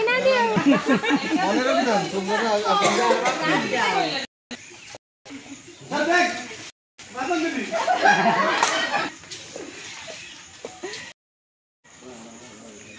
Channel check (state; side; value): identical; both; correlation 1.00